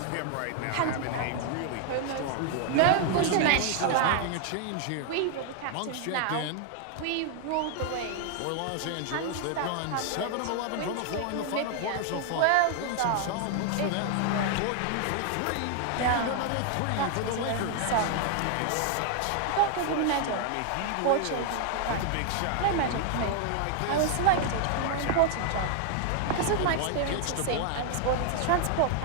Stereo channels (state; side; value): different; both; correlation 0.00